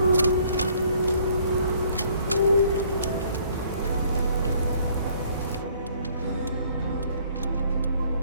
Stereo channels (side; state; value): both; inverted; correlation -0.61